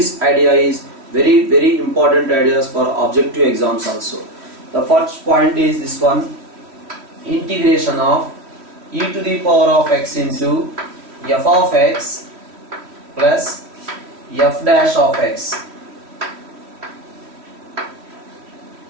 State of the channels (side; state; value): left; late; 3.1 ms